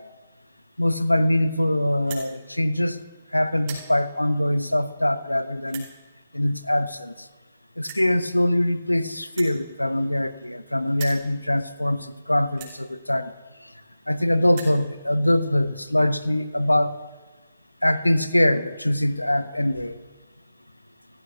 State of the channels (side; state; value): both; inverted; correlation -0.97